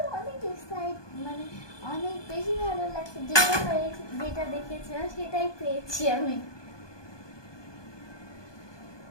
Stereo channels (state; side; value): late; right; 1.2 ms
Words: অনেক এক্সাইট, মানে অনেক বেশি ভালো লাগছে। যেটা দেখেছিলাম সেটাই পেয়েছি আমি।